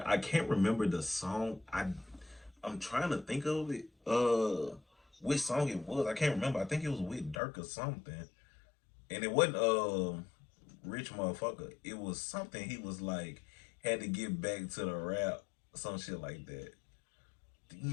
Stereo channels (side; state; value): right; drops out; at 7.4 s